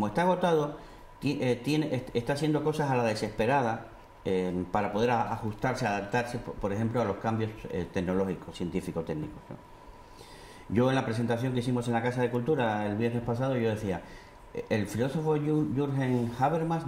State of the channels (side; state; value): both; identical; correlation 1.00